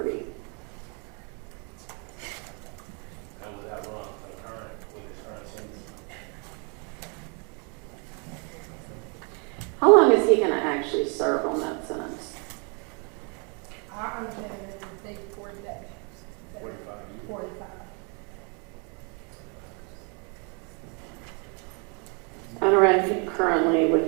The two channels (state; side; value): quieter; left; 35.6 dB